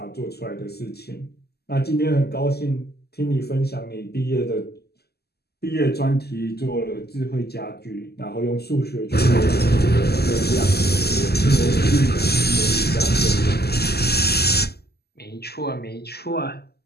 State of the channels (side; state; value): right; late; 0.46 ms